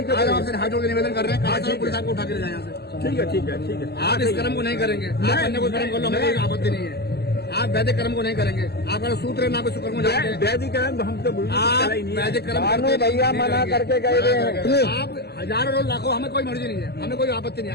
है। आज आपसे हाथ जोड़ के निवेदन कर रहे हैं, कहा पुलिस आपको उठा के ले जाए यहाँ से। ठीक है, ठीक है, ठीक है। आप इस कर्म को नहीं करेंगे। आप अन्य कोई कर्म कर लो, हमें कोई आपत्ति नहीं है। आप वैदिक कर्म को नहीं करेंगे। आपका सूत्र है ना, कोई शुक्र को जानते हैं। वैदिक कर्म हम तो आप वैदिक कर्म भैया मना करके गए हैं। आप हजारों लाखों, हमें कोई मर्जी नहीं है, हमें कोई आपत्ति नहीं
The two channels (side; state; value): right; late; 0.47 ms